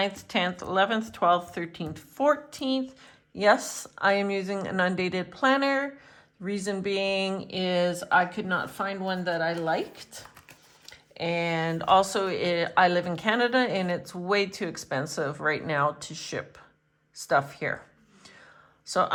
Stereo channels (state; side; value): identical; both; correlation 1.00